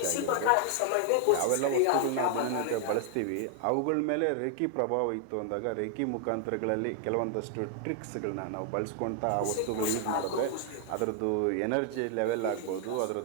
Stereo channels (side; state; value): both; different; correlation 0.00